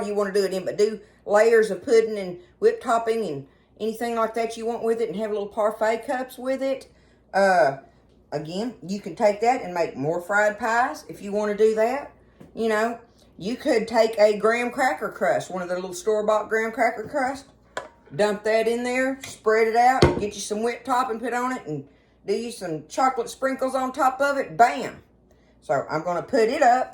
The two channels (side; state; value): both; identical; correlation 1.00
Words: you want to do it in, but do layers of pudding and whipped topping and anything like that you want with it and have little parfait cups with it. Again, you can take that and make more fried pies if you want to do that. You could take a graham cracker crust, one of the little store-bought graham cracker crust, dump that in there, spread it out, get you some whipped topping put on it, and do you some chocolate sprinkles on top of it. Bam! So I'm going to put it